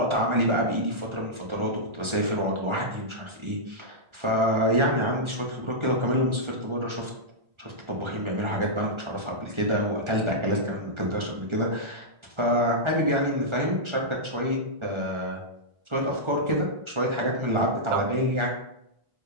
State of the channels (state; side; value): late; left; 1.4 ms